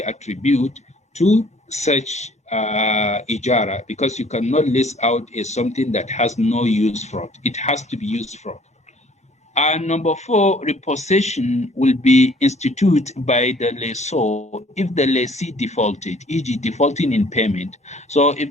attributed to such Ijara, because you cannot lease out something that has no use for it. It has to be used for. And number 4, repossession will be instituted by the lessor if the lessee defaulted, e.g. defaulting in payment. So if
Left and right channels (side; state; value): both; normal; correlation 0.57